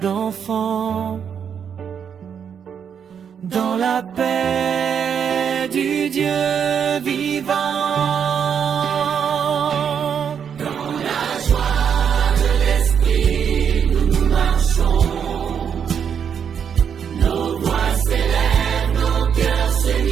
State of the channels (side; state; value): left; quieter; 7.6 dB